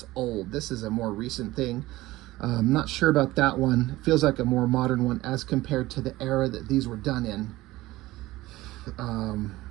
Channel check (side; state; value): left; quieter; 17.9 dB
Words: old. This is a more recent thing. I'm not sure about that one. It feels like a more modern one as compared to the era that these were done in.